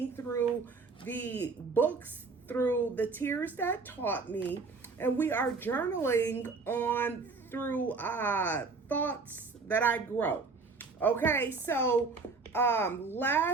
through the books through The Tears That Taught Me, and we are journaling on through thoughts that I grow. Okay, so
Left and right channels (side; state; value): left; quieter; 4.3 dB